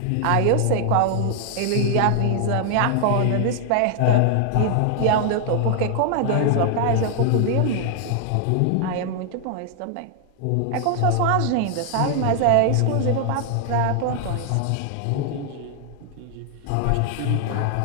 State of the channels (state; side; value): different; both; correlation 0.00